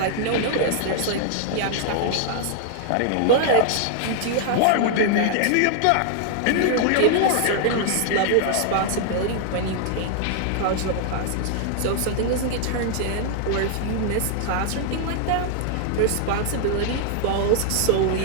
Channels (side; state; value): both; different; correlation -0.01